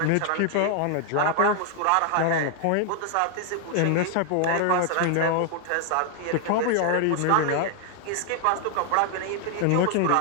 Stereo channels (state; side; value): different; both; correlation 0.00